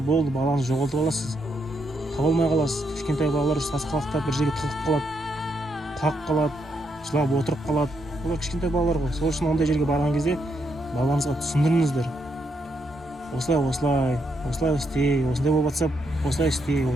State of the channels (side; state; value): both; normal; correlation 0.79